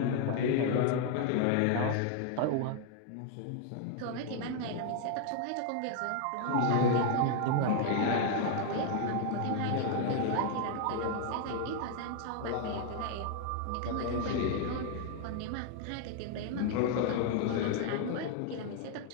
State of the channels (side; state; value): both; different; correlation 0.00